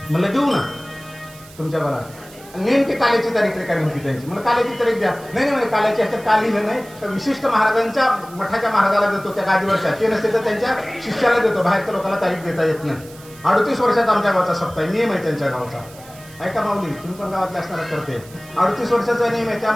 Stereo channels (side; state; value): right; noise; hiss, 21 dB below the sound